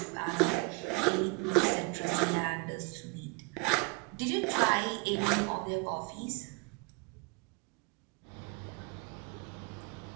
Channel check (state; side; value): quieter; left; 29.3 dB